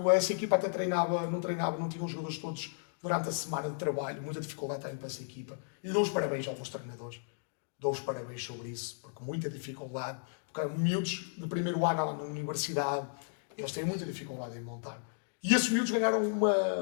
essa equipa até não tinha os jogadores todos durante a semana de trabalho, muita dificuldade também para essa equipa. E dou os parabéns aos meus treinadores, dou os parabéns sobre isso, porque muita dificuldade, porque miúdos de primeiro ano na universidade, eles têm muita dificuldade em montar. E esses miúdos ganharam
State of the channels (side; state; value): right; silent; digital silence